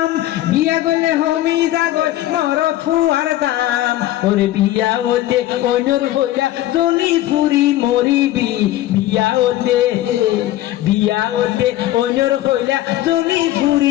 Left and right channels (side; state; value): right; quieter; 14.6 dB